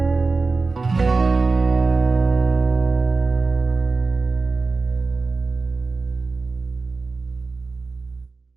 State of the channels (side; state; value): left; quieter; 3.9 dB